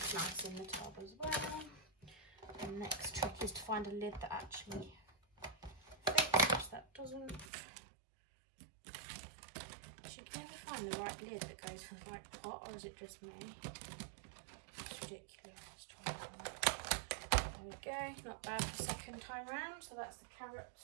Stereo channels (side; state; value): left; drops out; at 7.5 s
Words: nice in the tub as well. The next trick is to find a lid that actually fits. That doesn't. You can never find the right lid that goes for the right pot, or is it just me? It's ridiculous. There we go. Not bad the second time round. So that's the